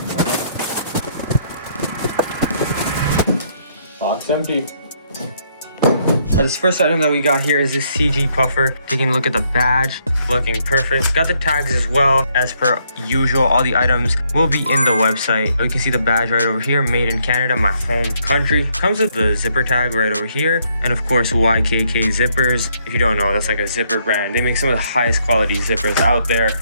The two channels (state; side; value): inverted; both; correlation -0.71